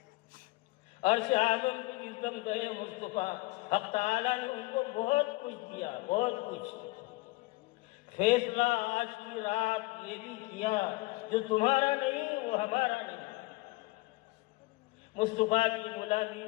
عرش اعظم پہ جس دم گئے مصطفیٰ، حق تعالیٰ نے ان کو بہت کچھ دیا، بہت کچھ، فیصلہ آج کی رات یہ بھی کیا جو تمہارا نہیں وہ ہمارا نہیں۔ مصطفیٰ کی غلامی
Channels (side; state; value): right; quieter; 22.5 dB